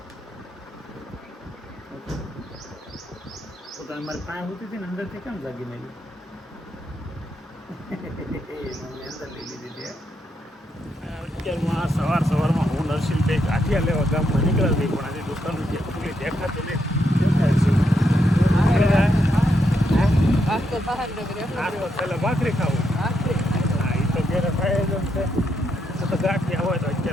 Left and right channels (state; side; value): normal; both; correlation 0.80